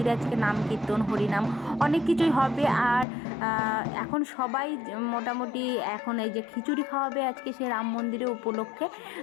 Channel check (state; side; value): drops out; right; at 3.1 s